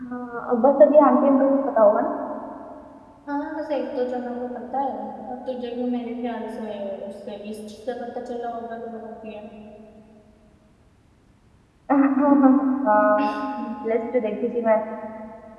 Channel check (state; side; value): identical; both; correlation 1.00